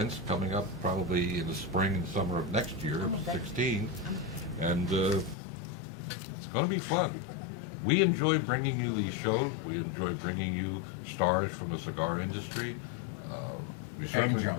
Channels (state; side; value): drops out; right; at 5.4 s